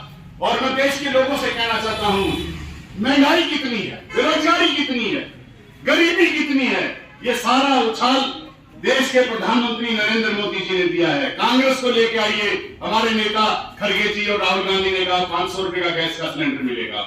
और मैं देश के लोगों से कहना चाहता हूं, महंगाई कितनी है, बेरोजगारी कितनी है, गरीबी कितनी है, ये सारा उछाल देश के प्रधानमंत्री नरेंद्र मोदी जी ने दिया है। कांग्रेस को लेके आइए, हमारे नेता खड़गे जी और राहुल गांधी ने कहा 500 रुपए का गैस का सिलेंडर मिलेगा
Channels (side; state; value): both; identical; correlation 1.00